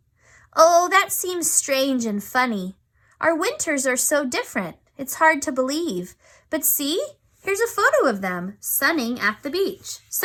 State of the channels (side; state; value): both; identical; correlation 1.00